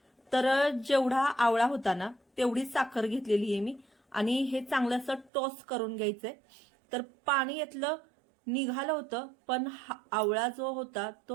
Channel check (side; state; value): left; drops out; at 5.3 s